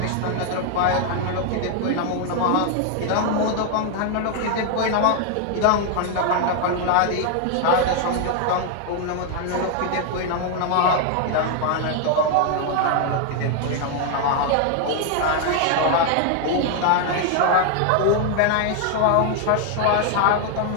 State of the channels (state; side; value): different; both; correlation 0.00